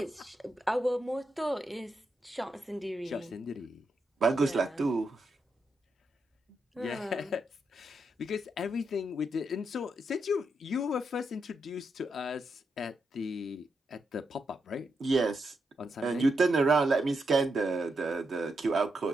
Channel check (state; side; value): normal; both; correlation 0.83